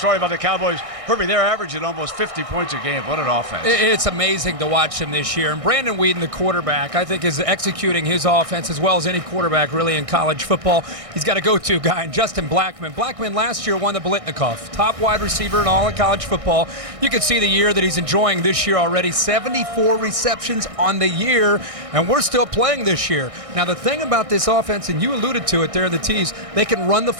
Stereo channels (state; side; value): late; left; 1.6 ms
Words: about the Cowboys. Herbie, they're averaging almost 50 points a game. What an offense. It's amazing to watch him this year. And Brandon Wheaton, the quarterback, I think is executing his offense as well as any quarterback really in college football. He's got a go-to guy, and Justin Blackman. Blackman last year won the Biletnikoff, top wide receiver in all of college football. You can see the year that he's enjoying this year already. 74 receptions on the year, and we're still playing this year. Now, the thing about this offense, and you alluded to it there in the tease, they can run the